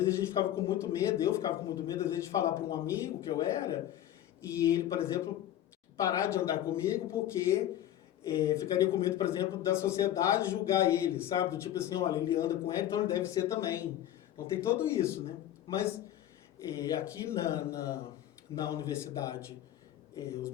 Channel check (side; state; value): right; quieter; 12.1 dB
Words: a gente ficava com muito medo, eu ficava com muito medo, às vezes, de falar para um amigo que eu era, e ele, por exemplo, parar de andar comigo porque ficaria com medo, por exemplo, da sociedade julgar ele, sabe? Do tipo assim, olha, ele anda com ele, então ele deve ser também. Então tem tudo isso, né? Mas aqui na universidade, os